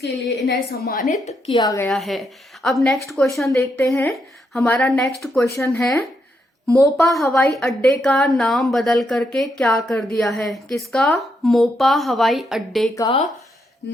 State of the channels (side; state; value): both; normal; correlation 0.79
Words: लिए इन्हें सम्मानित किया गया है। अब नेक्स्ट क्वेश्चन देखते हैं। हमारा नेक्स्ट क्वेश्चन है, मोपा हवाई अड्डे का नाम बदल करके क्या कर दिया है? किसका? मोपा हवाई अड्डे का